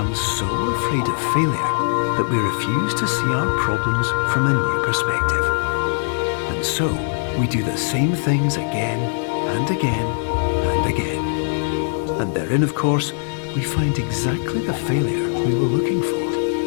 so afraid of failure that we refuse to see our problems from a new perspective. And so, we do the same things again and again and again. And therein, of course, we find exactly the failure we were looking for.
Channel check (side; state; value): right; silent; digital silence